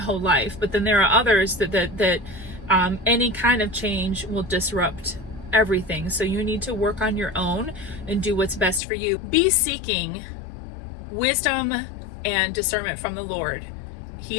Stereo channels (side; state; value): right; drops out; at 8.8 s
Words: life. But then there are others that any kind of change will disrupt everything. So you need to work on your own and do what's best for you. Be seeking wisdom and discernment from the Lord. He